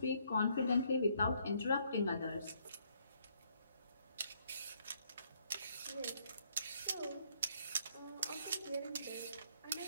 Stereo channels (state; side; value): inverted; both; correlation -0.69